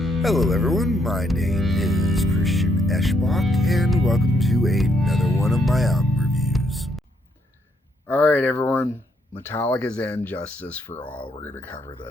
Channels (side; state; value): both; normal; correlation 0.74